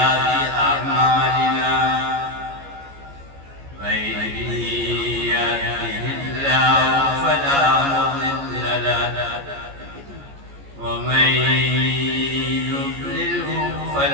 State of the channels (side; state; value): left; late; 14 ms